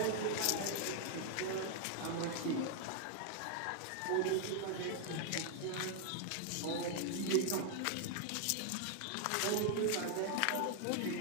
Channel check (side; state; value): both; different; correlation 0.00